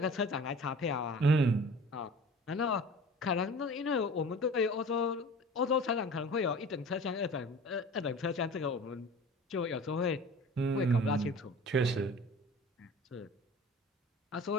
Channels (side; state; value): both; normal; correlation 0.41